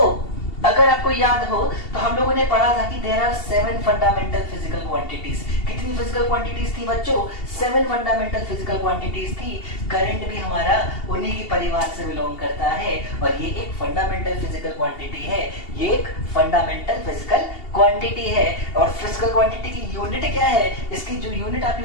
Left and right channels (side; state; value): right; late; 2.8 ms